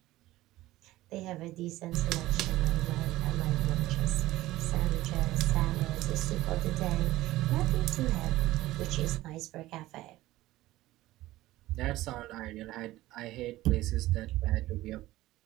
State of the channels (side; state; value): left; quieter; 16.8 dB